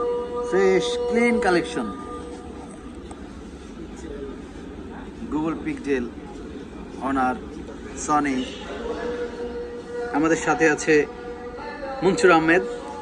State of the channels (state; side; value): identical; both; correlation 1.00